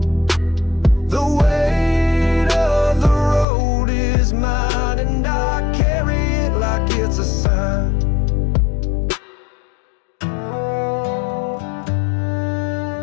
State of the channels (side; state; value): right; drops out; at 3.5 s